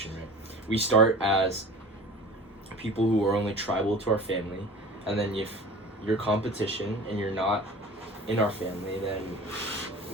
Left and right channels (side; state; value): both; normal; correlation 0.39